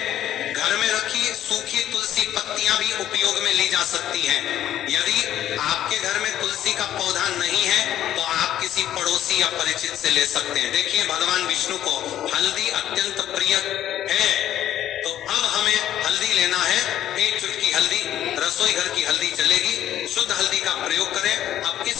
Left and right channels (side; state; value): right; quieter; 11.8 dB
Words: घर में रखी सूखी तुलसी पत्तियां भी उपयोग में ली जा सकती हैं। यदि आपके घर में तुलसी का पौधा नहीं है तो आप किसी पड़ोसी या परिचित से ले सकते हैं। देखिए, भगवान विष्णु को हल्दी अत्यंत प्रिय है, तो अब हमें हल्दी लेना है। 1 चुटकी हल्दी, रसोई घर की हल्दी चलेगी, शुद्ध हल्दी का प्रयोग करें। अब